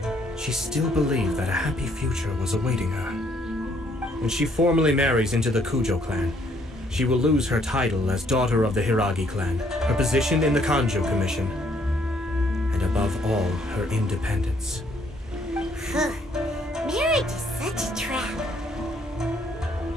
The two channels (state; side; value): normal; both; correlation 0.66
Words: she still believed that a happy future was awaiting her. When she formally marries into the Kujou clan, she will lose her title as daughter of the Hiiragi clan, her position in the Kanjo Commission, and above all, her independence. Marriage is such a trap.